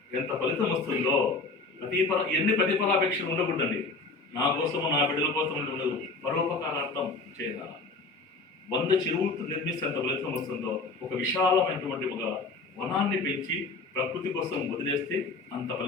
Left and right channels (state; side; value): quieter; right; 3.6 dB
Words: ఎంత ఫలితం వస్తుందో, ఎన్ని ప్రతిఫలాపేక్షలు ఉండకూడదండి. నా కోసము నా బిడ్డల కోసం ఉండదు, పరోపకారార్థం చేయాలి. 100 చెరువులు నిర్మిస్తే ఎంత ఫలితం వస్తుందో, ఒక విశాలమైనటువంటి ఒక వనాన్ని పెంచి ప్రకృతి కోసం వదిలేస్తే అంత